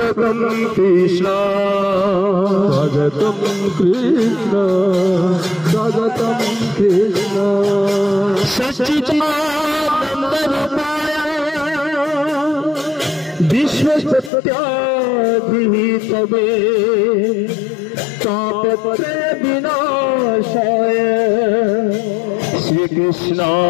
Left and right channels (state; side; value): drops out; right; at 14.3 s